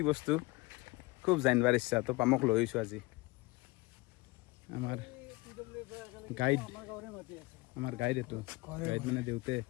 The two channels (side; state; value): right; quieter; 23.5 dB